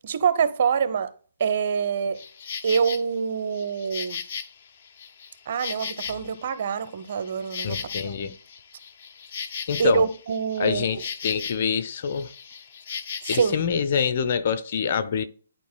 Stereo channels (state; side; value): inverted; both; correlation -0.68